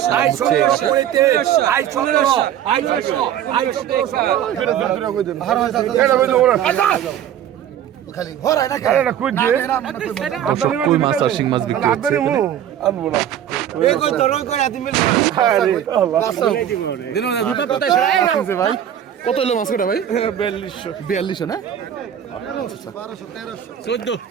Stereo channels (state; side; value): quieter; left; 10.3 dB